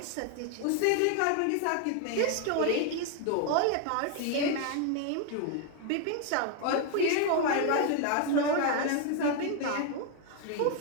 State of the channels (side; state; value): both; different; correlation 0.01